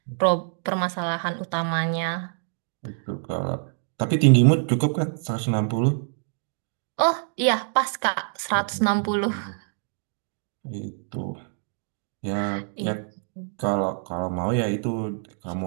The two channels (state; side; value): silent; left; 58 dB below the other